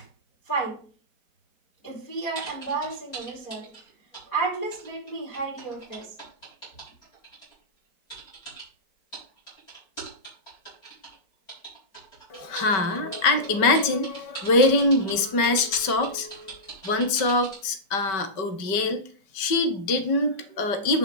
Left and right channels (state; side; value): late; right; 5.1 ms